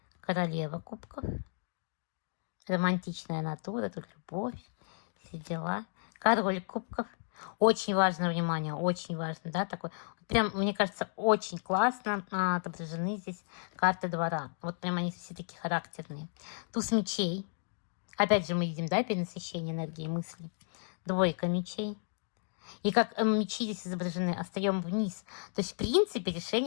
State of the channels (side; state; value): right; silent; digital silence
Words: Королева кубков. Романтичная натура, тут любовь, все дела. Король кубков. Очень важно внимание, очень важно, да, такой. Прям, мне кажется, очень классно отображены здесь карты двора. Вот прям они все такие характерные. Туз мечей. Опять же мы видим, да, перенасыщение энергии мысли. 2 мечей. И как мечи здесь изображены, остаем вниз. То есть, в принципе,